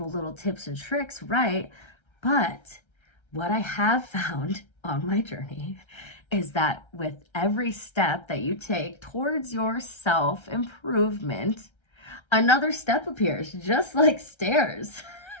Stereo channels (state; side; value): late; right; 1.3 ms